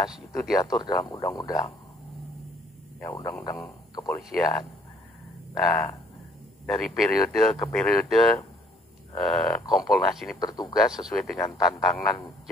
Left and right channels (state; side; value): normal; both; correlation 0.62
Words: itu diatur dalam undang-undang. Ya, undang-undang kepolisian. Nah, dari periode ke periode Kompolnas ini bertugas sesuai dengan tantangan